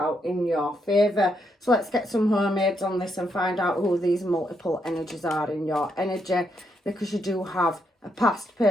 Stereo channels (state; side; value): normal; both; correlation 0.78